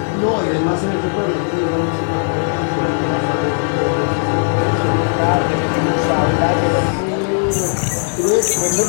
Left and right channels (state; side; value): silent; right; digital silence